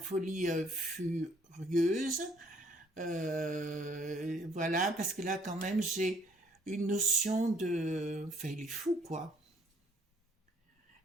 furieuse. Voilà, parce que là, quand même, j'ai une notion de... Enfin, il est fou, quoi.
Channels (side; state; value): both; normal; correlation 0.62